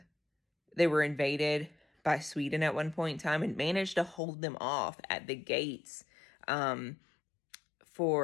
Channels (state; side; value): drops out; right; at 4.2 s